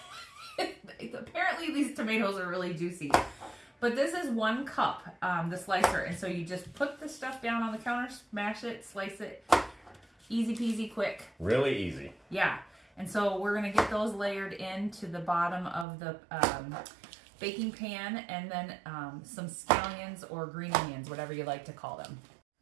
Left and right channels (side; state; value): left; drops out; at 15.9 s